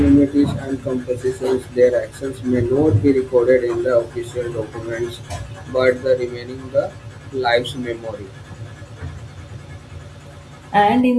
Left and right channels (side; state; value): both; identical; correlation 1.00